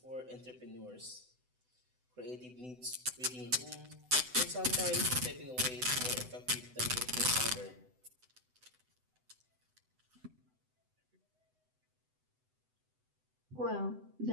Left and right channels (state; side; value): late; left; 7.9 ms